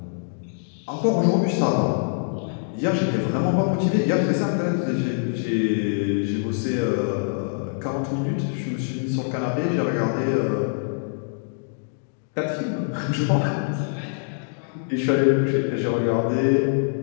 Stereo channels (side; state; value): right; silent; digital silence